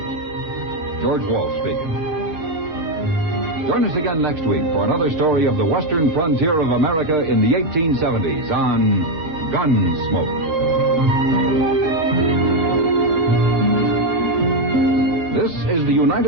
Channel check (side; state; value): left; late; 6.6 ms